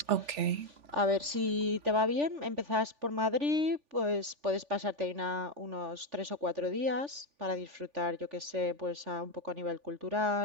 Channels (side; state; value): left; late; 3.4 ms